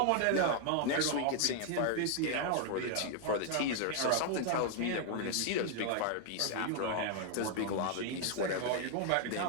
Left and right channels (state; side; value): different; both; correlation 0.00